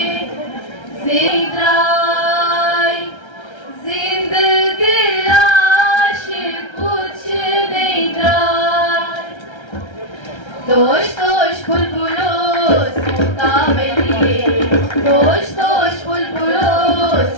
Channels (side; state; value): right; late; 1.3 ms